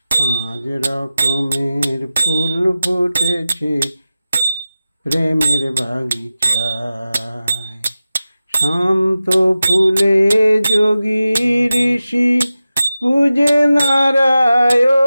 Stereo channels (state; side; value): inverted; both; correlation -0.94